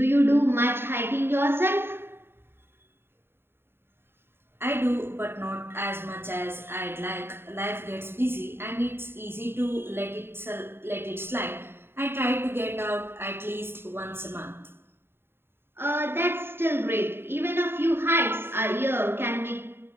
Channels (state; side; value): late; left; 0.11 ms